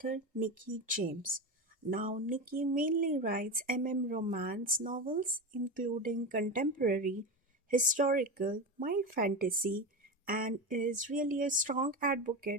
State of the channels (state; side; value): normal; both; correlation 0.21